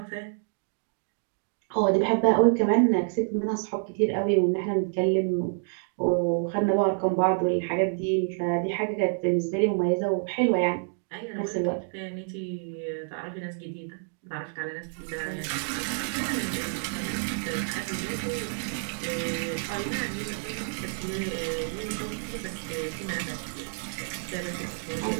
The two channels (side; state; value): left; silent; digital silence